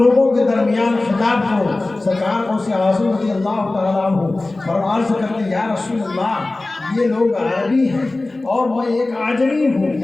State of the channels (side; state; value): right; quieter; 3.0 dB